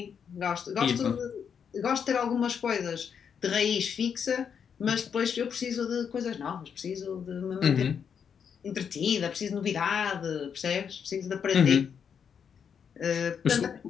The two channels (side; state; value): right; quieter; 7.2 dB